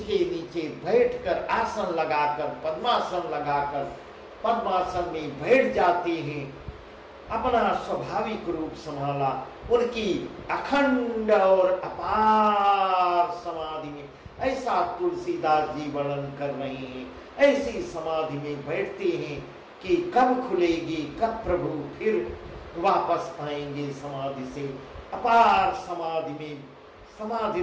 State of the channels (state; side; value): identical; both; correlation 1.00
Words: नीचे बैठकर आसन लगाकर पद्मासन में बैठ जाते हैं। अपना स्वाभाविक रूप संभाला, उनकी अखंड और अपार समाधि में ऐसा तुलसीदास जी वर्णन कर रहे हैं। ऐसी समाधि में बैठते हैं कि कब खुलेगी, कब प्रभु फिर वापस आएंगे समाधि से। अपार समाधि में समाधि